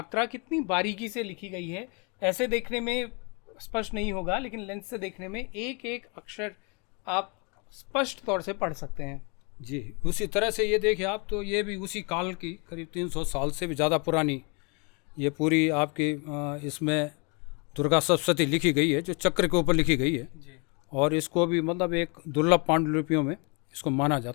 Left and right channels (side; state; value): right; quieter; 32.9 dB